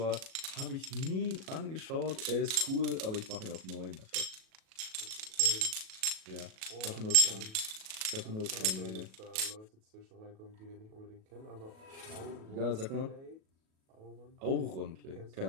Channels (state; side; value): late; left; 37 ms